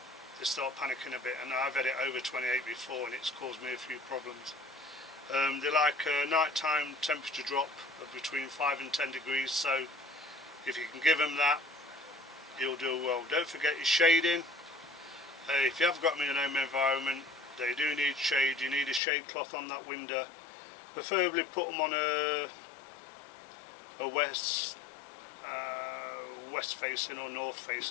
They start panicking a bit, and I've had it over 28 before, and it's caused me a few problems. They like a nighttime temperature drop of between 5 and 10 degrees, so if you can give them that, you'll do well. Don't forget your shading. If you have got them in an home environment, they do need shade. You need a shade cloth on that window. Preferably put them on a west facing or north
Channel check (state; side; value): drops out; right; at 19.0 s